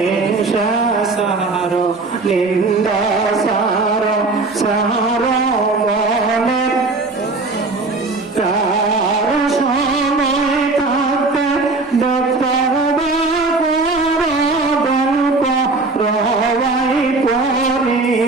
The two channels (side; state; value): left; quieter; 3.5 dB